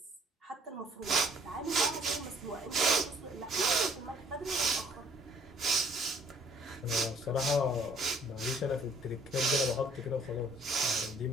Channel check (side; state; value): both; normal; correlation 0.59